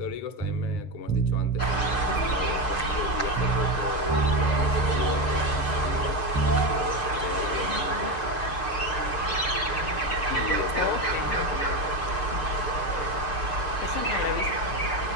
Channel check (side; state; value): right; late; 6.7 ms